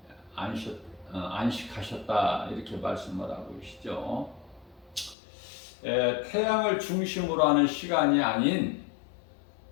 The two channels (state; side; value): drops out; right; at 5.2 s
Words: 안식하셨다 이렇게 말씀을 하고 계시죠. 태양을 중심으로 하는 시간이 아닌